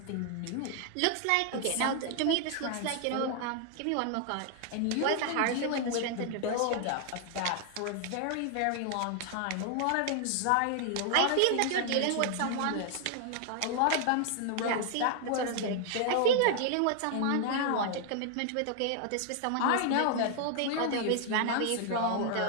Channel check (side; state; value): both; different; correlation 0.00